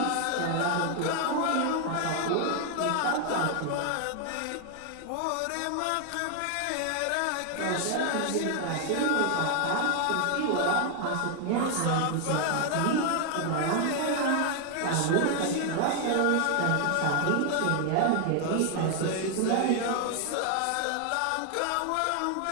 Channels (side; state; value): both; different; correlation 0.00